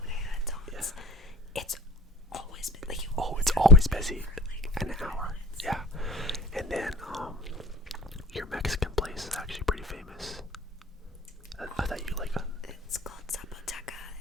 to Anton's? Yeah. It's always been it's always busy. An hour. Yeah. And then your Mexican place is actually pretty famous. I thought you like it's called Zapoteca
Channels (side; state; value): both; normal; correlation 0.37